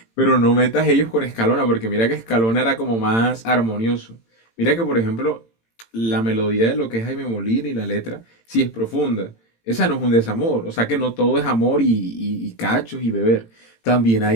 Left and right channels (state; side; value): late; right; 18 ms